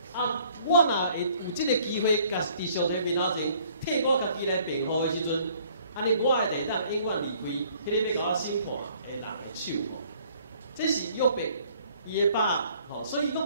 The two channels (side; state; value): both; inverted; correlation -0.59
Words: 我若会有即个机会，甲伫上帝面头前替我家己来辩护的时阵，安尼我会当永远离开迄个要甲我审判的人的手。这是约伯伊的把所以